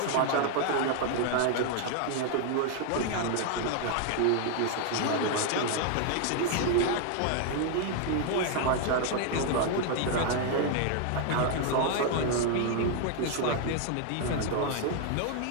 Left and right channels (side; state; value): both; different; correlation 0.00